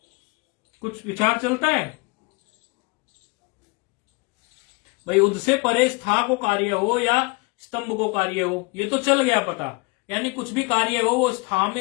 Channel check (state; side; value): quieter; right; 28.3 dB